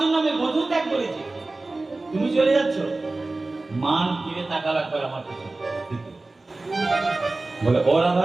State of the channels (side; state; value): left; quieter; 3.2 dB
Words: আমি বন্ধু ত্যাগ করেছি, তুমি চলে যাচ্ছ। মান ফিরে তাকাল একবার আমার কাছে, বলে ও